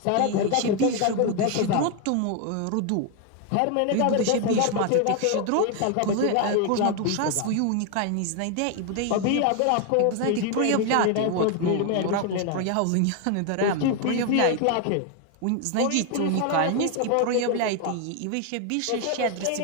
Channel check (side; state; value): both; different; correlation 0.01